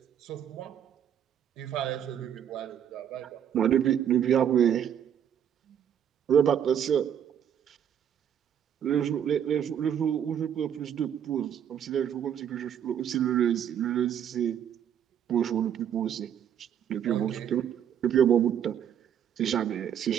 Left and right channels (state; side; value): quieter; left; 9.3 dB